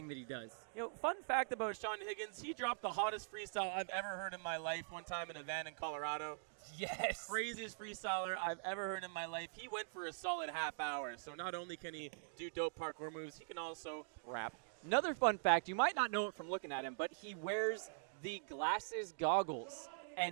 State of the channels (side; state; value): left; silent; digital silence